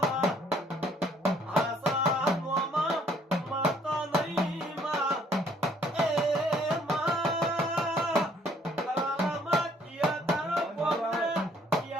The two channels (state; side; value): normal; both; correlation 0.62